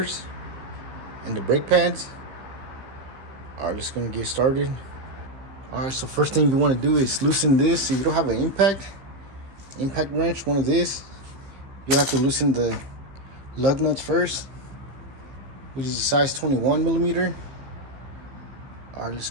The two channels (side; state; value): left; late; 15 ms